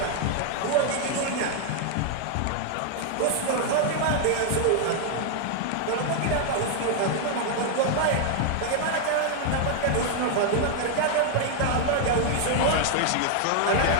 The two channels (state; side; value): different; both; correlation 0.00